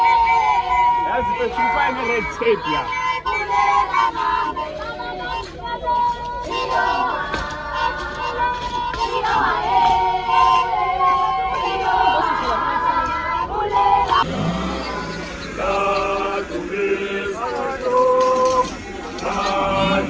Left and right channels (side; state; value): both; identical; correlation 1.00